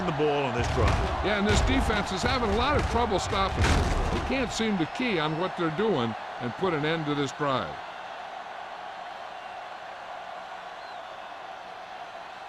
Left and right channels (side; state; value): both; identical; correlation 1.00